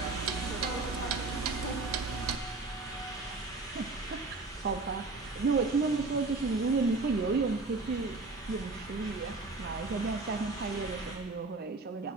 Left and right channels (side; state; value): left; quieter; 3.6 dB